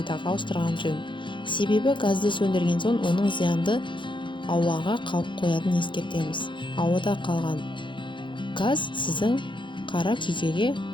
ауыстырған жөн. Себебі газды сөндірген соң оның зиянды ауаға қалып қоятынын ескертеміз. Ауада қалған газ сіздің қара күйкеге,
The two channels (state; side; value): late; right; 0.23 ms